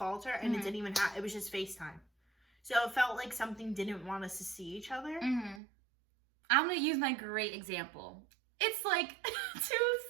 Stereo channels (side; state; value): left; drops out; at 5.6 s